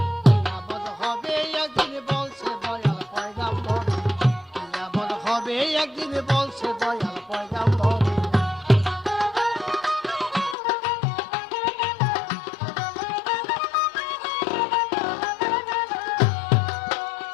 কিয়ামত হবে একদিন বলছে দয়াল পয়গম্বর, কিয়ামত হবে একদিন বলছে দয়াল পয়গম্বর।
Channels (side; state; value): right; drops out; at 10.6 s